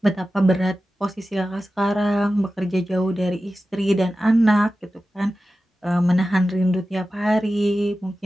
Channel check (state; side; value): normal; both; correlation 0.94